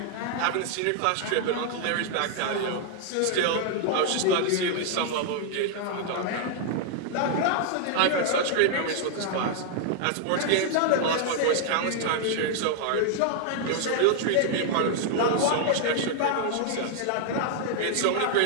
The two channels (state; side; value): different; both; correlation 0.00